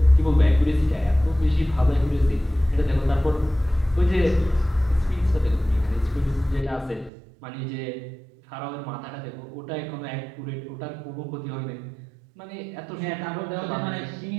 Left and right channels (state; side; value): drops out; left; at 7.1 s